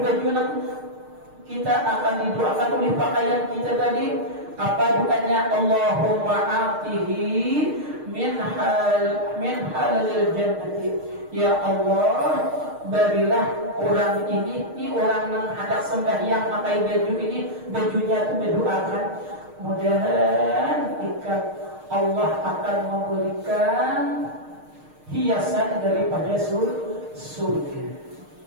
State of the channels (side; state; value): left; late; 6.5 ms